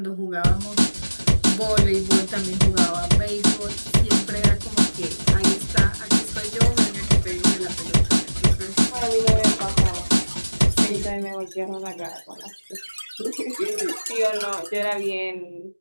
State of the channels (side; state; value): both; inverted; correlation -1.00